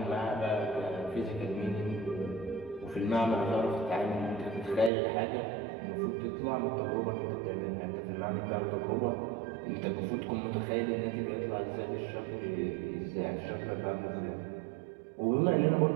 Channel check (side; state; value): left; drops out; at 4.9 s